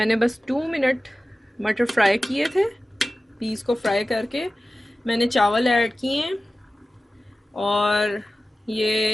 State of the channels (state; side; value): normal; both; correlation 0.95